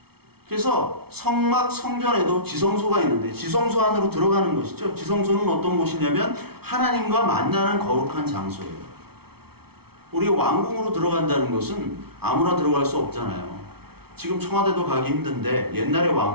그래서 성전에도 지성소가 있는데 지성소 안으로 들어가는 것이죠. 지성소는 어떤 곳이냐면 하나님과 만나는 거룩한 장소예요. 우리가 왕궁으로 들어간다는 것은 아무나 들어갈 수 없잖아요. 지금 청와대도 가기 힘든데 옛날의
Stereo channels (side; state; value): left; late; 0.95 ms